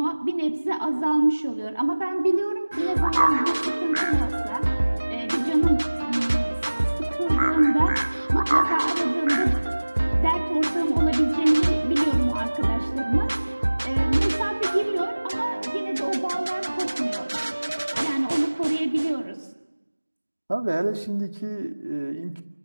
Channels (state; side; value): inverted; both; correlation -1.00